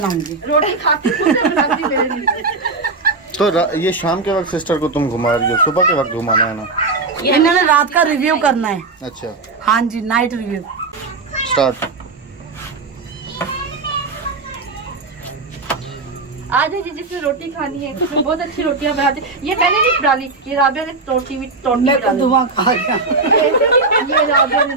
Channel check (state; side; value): quieter; left; 3.8 dB